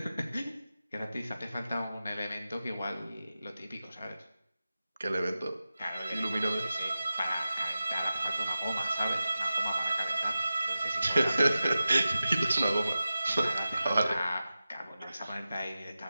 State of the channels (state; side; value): inverted; both; correlation -0.94